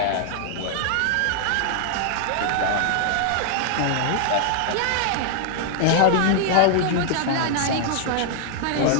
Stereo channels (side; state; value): both; different; correlation 0.00